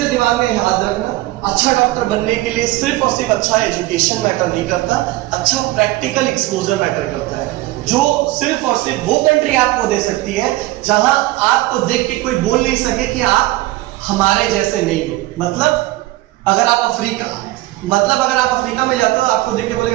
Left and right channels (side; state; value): left; quieter; 18.1 dB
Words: दिमाग में याद रखना, अच्छा डॉक्टर बनने के लिए सिर्फ और सिर्फ अच्छा एजुकेशन मैटर नहीं करता, अच्छा प्रैक्टिकल एक्सपोजर मैटर करता है, जो सिर्फ और सिर्फ वो कंट्री आपको दे सकती है जहां आपको देख के कोई बोल नहीं सके कि आप हमारे जैसे नहीं हो। मतलब अगर आप अफ्रीका में जाते हो आपको देख के